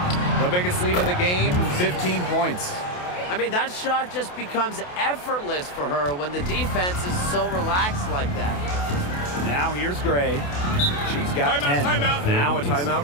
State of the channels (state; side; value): late; right; 28 ms